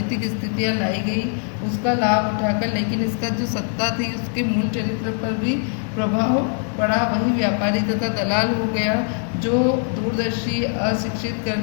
स्थितियां लाई गई उसका लाभ उठाकर, लेकिन इसका जो सत्ता थी उसके मूल चरित्र पर भी प्रभाव पड़ा। वही व्यापारी तथा दलाल हो गया। जो दूरदर्शी अशिक्षित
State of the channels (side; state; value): right; silent; 56 dB below the other